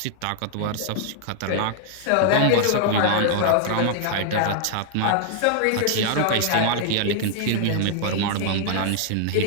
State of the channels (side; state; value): both; different; correlation 0.00